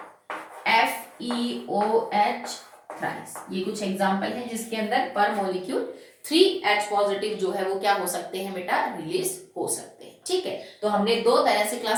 FeOH थ्राइस। ये कुछ एग्जांपल है जिसके अंदर पर मॉलिक्यूल 3 H पॉजिटिव जो है वो क्या हो सकते हैं बेटा? रिलीज हो सकते हैं, ठीक है। तो हमने दो तरह से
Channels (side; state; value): both; identical; correlation 1.00